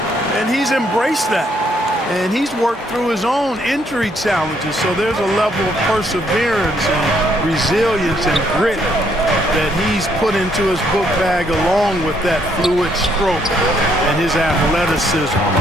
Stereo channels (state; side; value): normal; both; correlation 0.71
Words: and he's embraced that. And he's worked through his own injury challenges, so there's a level of perseverance and resilience and grit that he's put into his book bag along with that fluid stroke and his athleticism.